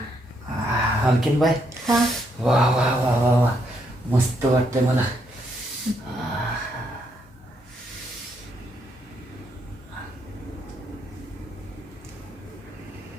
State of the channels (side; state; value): both; normal; correlation 0.75